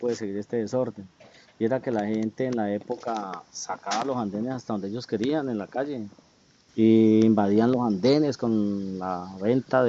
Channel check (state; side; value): identical; both; correlation 1.00